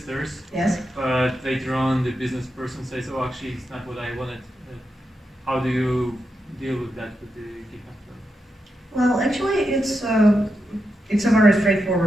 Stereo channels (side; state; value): both; normal; correlation 0.86